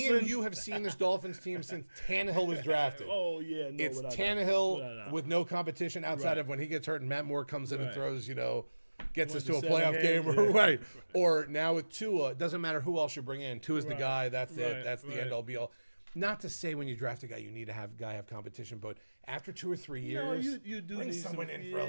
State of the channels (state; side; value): inverted; both; correlation -1.00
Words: and you have seen this Dolphins team since Tannehill was drafted. It's Tannehill with no competition outside of when he gets hurt and Matt Moore comes in and throws, gets us to a playoff game, or now with Tua. It doesn't matter who else you bring in. Tua's the guy. That's it. That's the end all be all. Not to say when you draft a guy you need to have competition, but after 2 or 3 years, you do bring need someone some, in for a